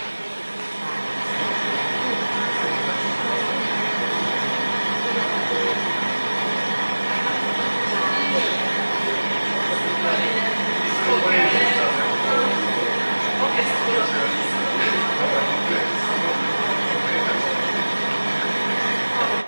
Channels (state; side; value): inverted; both; correlation -1.00